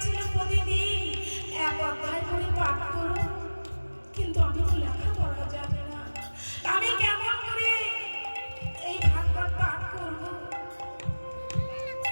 প্রতিদিন এক অধ্যায় করে পাঠ করো, কিন্তু আমি তো লেখাপড়া জানি না, আমি কেমন করে এই ভাগবত পাঠ করব?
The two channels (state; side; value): inverted; both; correlation -1.00